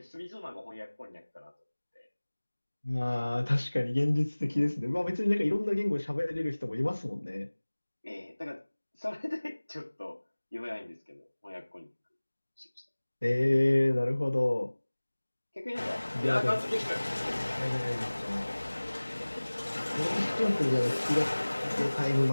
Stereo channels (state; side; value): inverted; both; correlation -1.00